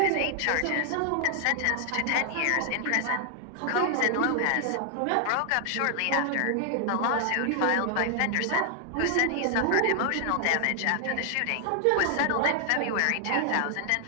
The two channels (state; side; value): different; both; correlation 0.00